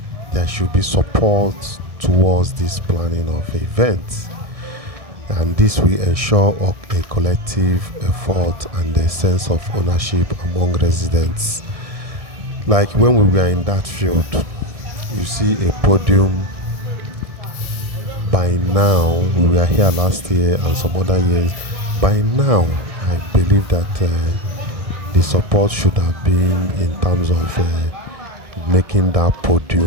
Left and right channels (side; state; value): left; late; 1.6 ms